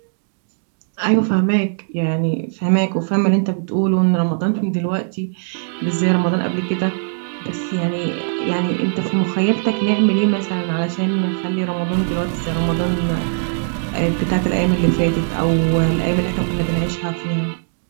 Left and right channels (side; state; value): left; silent; digital silence